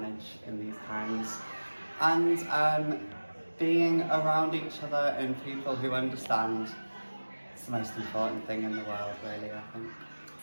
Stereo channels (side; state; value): both; inverted; correlation -1.00